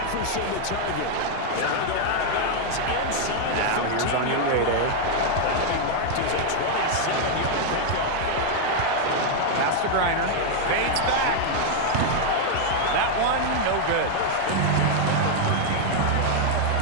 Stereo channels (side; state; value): both; different; correlation 0.00